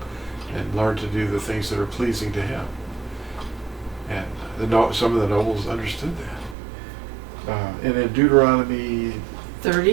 and learn to do the things that are pleasing to him. And some of the nobles understood that. And in Deuteronomy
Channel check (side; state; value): left; drops out; at 6.6 s